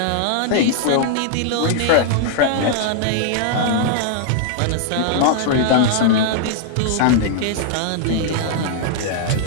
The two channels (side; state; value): both; different; correlation -0.01